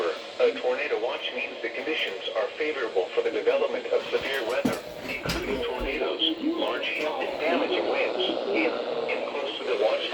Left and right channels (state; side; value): identical; both; correlation 1.00